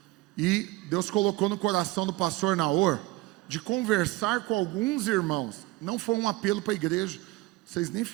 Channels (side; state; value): left; quieter; 19.9 dB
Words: E Deus colocou no coração do pastor Naor de conversar com alguns irmãos. Não foi um apelo para a igreja, vocês nem